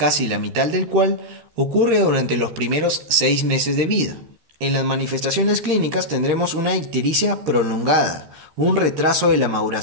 la mitad del cual ocurre durante los primeros 6 meses de vida. En las manifestaciones clínicas tendremos una ictericia prolongada, un retraso de la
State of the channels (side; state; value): left; late; 13 ms